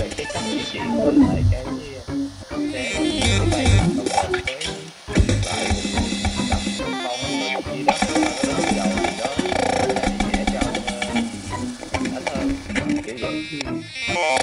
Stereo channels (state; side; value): identical; both; correlation 1.00